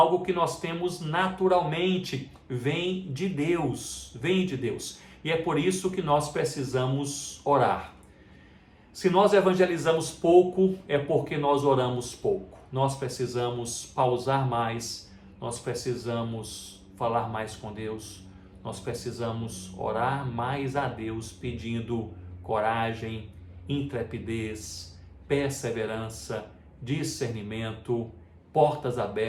que nós temos naturalmente, vem de Deus, E é por isso que nós precisamos orar. Se nós evangelizamos pouco, é porque nós oramos pouco. Nós precisamos pausar mais, nós precisamos falar mais com Deus, nós precisamos orar mais a Deus, pedindo coragem, intrepidez, perseverança, discernimento, portas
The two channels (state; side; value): identical; both; correlation 1.00